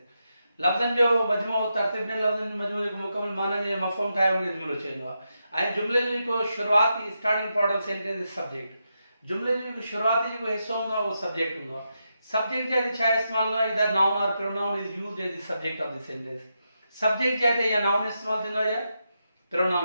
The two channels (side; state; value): both; inverted; correlation -0.85